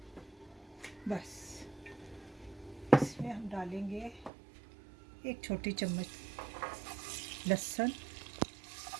बस इसमें हम डालेंगे 1 छोटी चम्मच लहसुन,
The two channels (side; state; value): left; drops out; at 4.3 s